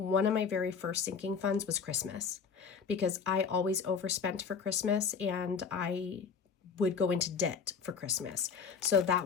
of my very first sinking funds was Christmas, because I always overspent for Christmas and I would go into debt for Christmas. So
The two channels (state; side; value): quieter; right; 6.0 dB